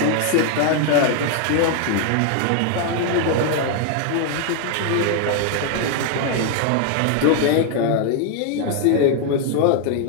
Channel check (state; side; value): different; both; correlation 0.00